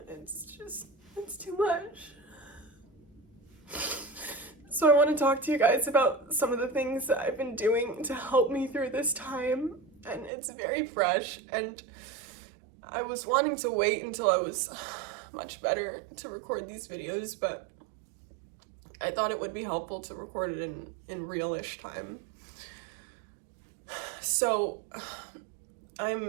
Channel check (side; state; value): left; drops out; at 10.3 s